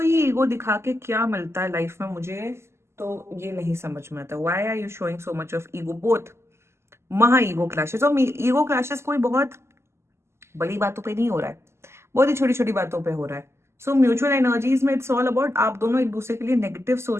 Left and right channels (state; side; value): late; left; 0.13 ms